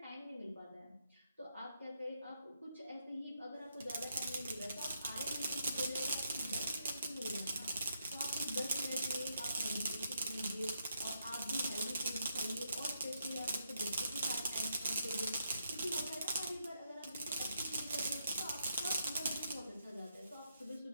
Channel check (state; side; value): inverted; both; correlation -0.79